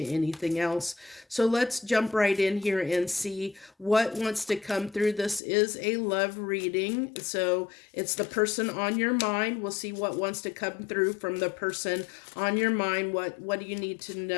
anything else. So let's jump right in here and see what wants to come through. This is a love reading, so it's the person on your mind. We'll see what wants to come through from the person on your mind. What do you need to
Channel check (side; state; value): right; drops out; at 5.4 s